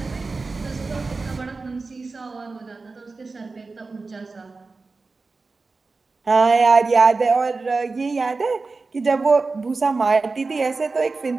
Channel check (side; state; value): left; quieter; 3.9 dB